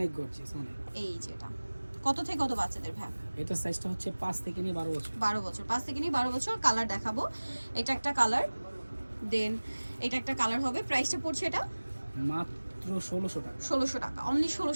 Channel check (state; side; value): inverted; both; correlation -1.00